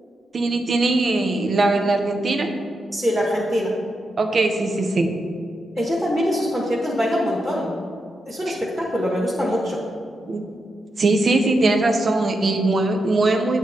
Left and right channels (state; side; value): normal; both; correlation 0.85